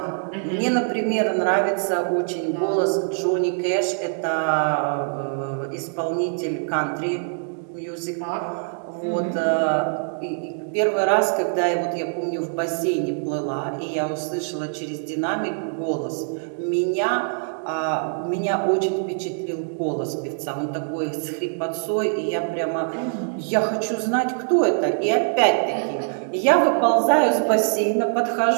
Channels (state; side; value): silent; left; digital silence